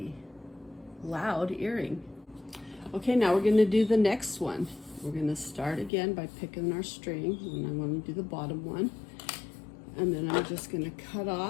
loud earring. Okay, now we're gonna do the next one. We're gonna start again by picking our string, and I wanna do the bottom one. And then I'm just gonna cut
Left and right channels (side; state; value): right; drops out; at 5.9 s